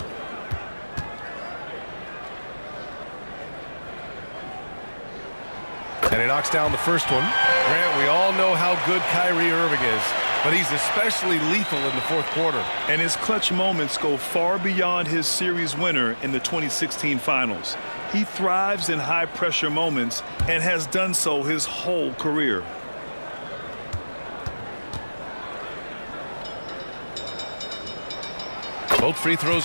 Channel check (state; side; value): inverted; both; correlation -1.00